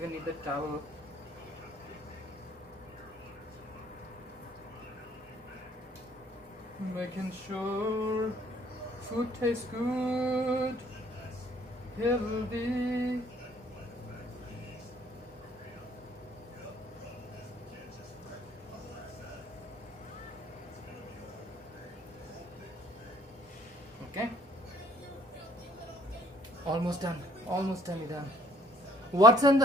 need the towel. Making sure food tastes good, healthy. Okay. Almost done. Almost done. What's in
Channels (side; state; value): both; normal; correlation 0.59